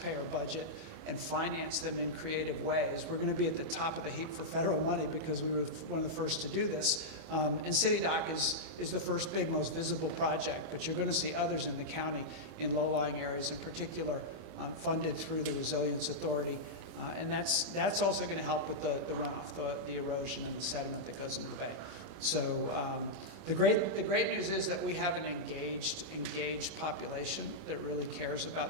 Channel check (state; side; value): late; left; 25 ms